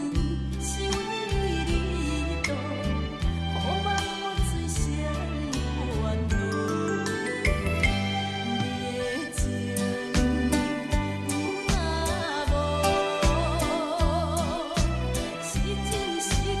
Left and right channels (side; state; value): both; identical; correlation 1.00